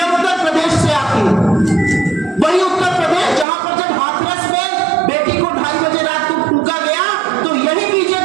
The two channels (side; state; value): left; drops out; at 3.5 s